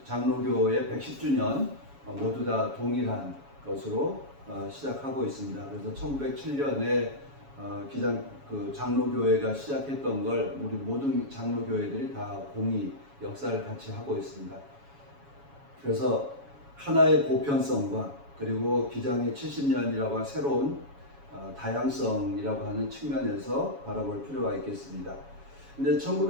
장로교의 110주년 모두 다 동일한 것으로 시작하고 있습니다. 그래서 1907년에 장로교회가 시작했던 걸 우리 모든 장로교회들이 다 공히 역사를 같이 하고 있습니다. 그래서 하나의 보편성과 그리고 기장의 70년이라고 하는 새로운 다양성이라고 하는 측면에서 바라볼 필요가 있겠습니다. 근데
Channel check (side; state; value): left; late; 7.2 ms